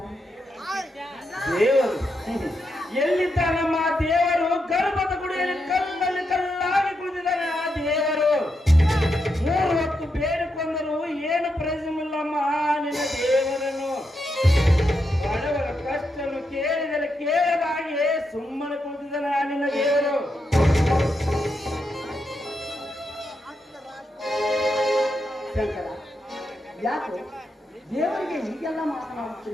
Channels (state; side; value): normal; both; correlation 0.83